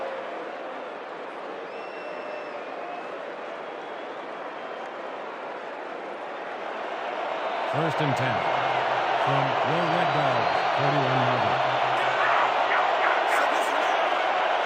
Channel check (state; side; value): identical; both; correlation 1.00